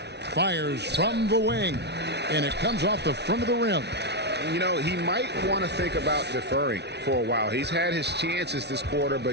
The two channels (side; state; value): left; late; 0.49 ms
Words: Fires from the wing. And it comes off the front of the rim. You know, he might want to think about deferring for a while. He's had his chances this quarter,